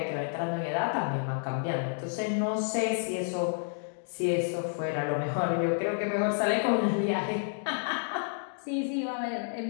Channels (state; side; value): silent; right; digital silence